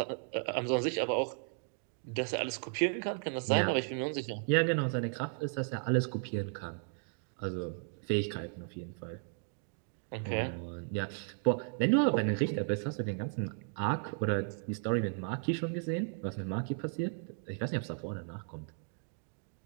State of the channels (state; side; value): silent; left; 54 dB below the other